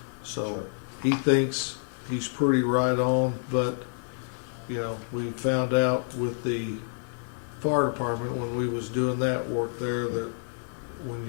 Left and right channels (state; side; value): silent; right; 59 dB below the other